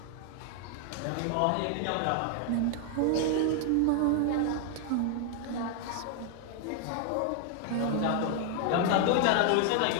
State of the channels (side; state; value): both; different; correlation 0.00